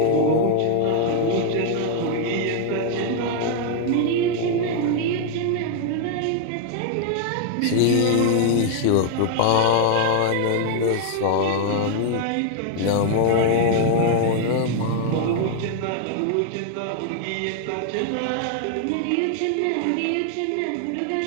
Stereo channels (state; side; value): different; both; correlation 0.00